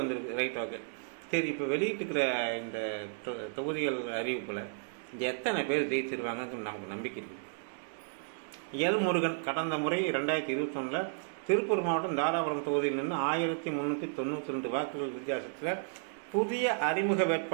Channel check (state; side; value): silent; left; digital silence